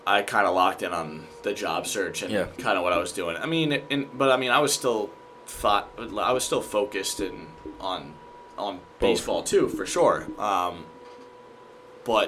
I kind of locked in on the job search and kind of what I was doing. I mean, I was still focused on baseball too, for sure.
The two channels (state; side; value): identical; both; correlation 1.00